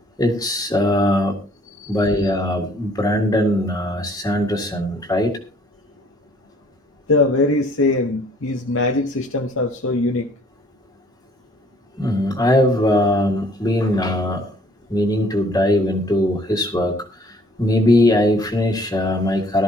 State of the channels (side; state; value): both; normal; correlation 0.59